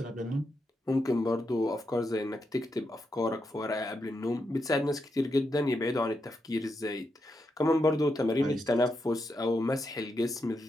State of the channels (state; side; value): normal; both; correlation 0.84